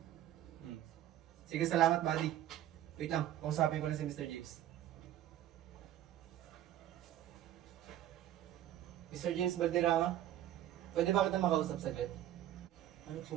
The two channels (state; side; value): quieter; left; 12.4 dB